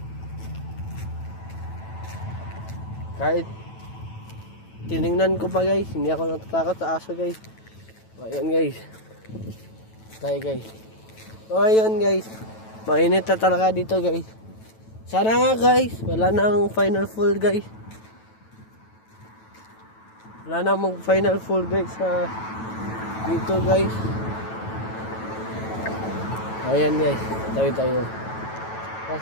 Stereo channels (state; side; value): late; right; 9.1 ms